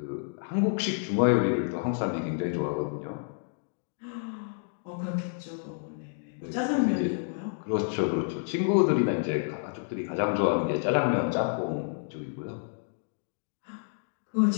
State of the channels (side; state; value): right; silent; digital silence